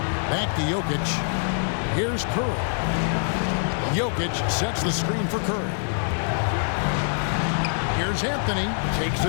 Back to Jokic. Here's Curry. Jokic sets the screen for Curry. Here's Anthony. Takes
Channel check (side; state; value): right; silent; digital silence